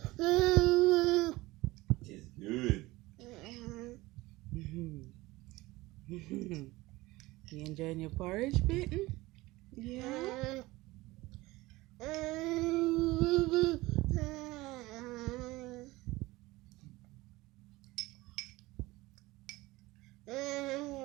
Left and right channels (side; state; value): left; quieter; 20.0 dB